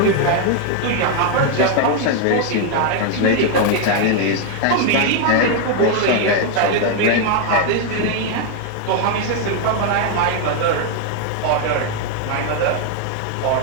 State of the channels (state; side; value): different; both; correlation 0.01